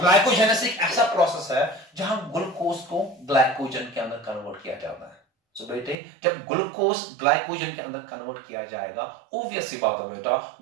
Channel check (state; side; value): drops out; left; at 6.0 s